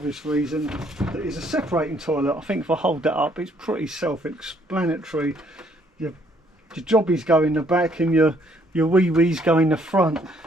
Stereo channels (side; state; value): both; normal; correlation 0.66